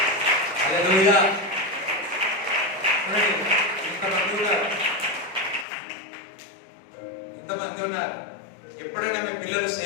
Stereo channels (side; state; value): right; drops out; at 5.7 s